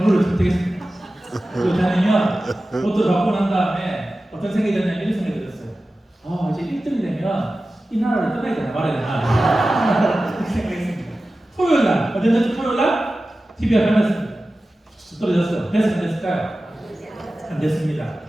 선택했습니다. 그렇다면 로또를 바꾸고 난 다음에 어떤 생각이 들었냐면 이런 생각이 들었어요. 이제 1등이 되면 이 나라를 떠나야 되나 말아야 되나 이렇게 생각했습니다. 토요일 날, 어땠는지 토요일 날 TV가 변했습니다. 떨어졌어요. 됐어요? 안 됐을까요? 안 됐습니다.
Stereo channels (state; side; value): normal; both; correlation 0.95